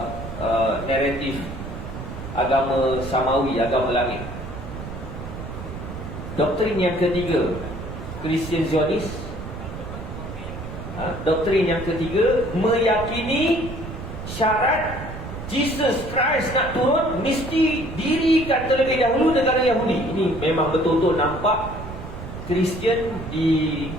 naratif agama Samawi, agama langit. Doktrin yang ketiga, Christian Zionis. Doktrin yang ketiga meyakini syarat Jesus Christ nak turun mesti dirikan terlebih dahulu negara Yahudi. Ini memang betul-betul nampak Kristian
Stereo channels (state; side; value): noise; right; rumble, 9 dB below the sound